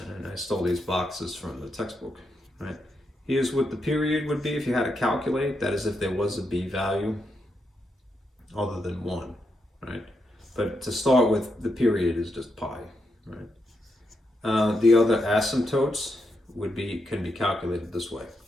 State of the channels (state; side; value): normal; both; correlation 0.83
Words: I stole these boxes from the textbook, right? Here's what the period would be if you had to calculate. That is if there was a b value other than 1, right? But to start with, the period is just pi, right? The other asymptotes can be calculated this way,